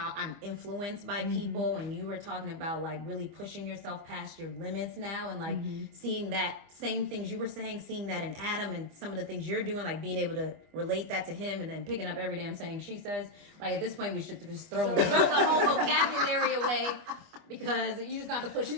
I'm influenced by people. And you were talking about like really pushing yourself past your limits now, and like seeing that same things you were saying, seeing that in Adam and some of the things you're doing, like being able to relate that to him, and then picking up every damn saying she says. Like at this point, we should just throw the whole vocabulary away. Because you just got to push through.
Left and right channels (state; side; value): late; left; 25 ms